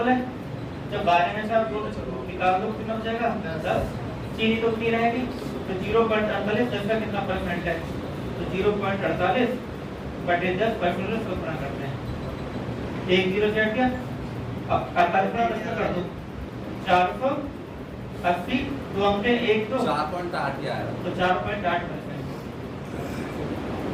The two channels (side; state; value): both; identical; correlation 1.00